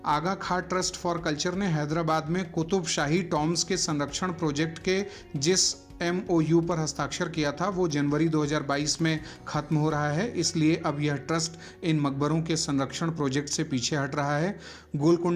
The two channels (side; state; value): both; identical; correlation 1.00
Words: आगा खान ट्रस्ट फॉर कल्चर ने हैदराबाद में कुतुब शाही टॉम्स के संरक्षण प्रोजेक्ट के जिस MOU पर हस्ताक्षर किया था वो जनवरी 2022 में खत्म हो रहा है, इसलिए अब यह ट्रस्ट इन मकबरों के संरक्षण प्रोजेक्ट से पीछे हट रहा है।